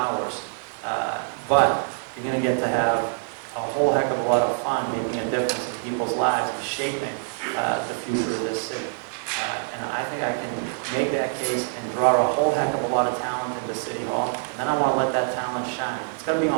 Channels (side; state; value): left; silent; digital silence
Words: but you're going to get to have a whole heck of a lot of fun making a difference in people's lives and shaping the future of this city. And I think I can make that case and draw a whole heck of a lot of talent into City Hall, and then I want to let that talent shine. It's got to be